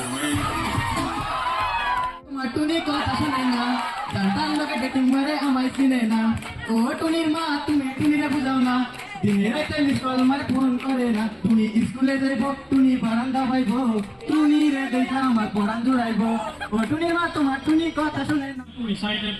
टुनी को पसंद जनता लोग डेटिंग मारे हमारे सीने ना ओ टुनीर माँ तुम्हें टुनीरे बुझाओ ना दिने राते मिसकॉल मारे फोन करे ना टुनी स्कूले जाइबो टुनी बारांदा पाइबो टुनी रे देखा हमार पढ़ान जुड़ाइबो ओ टुनीर माँ तुम्हार टुनी কথা শুনে না। To recite a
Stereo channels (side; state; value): both; identical; correlation 1.00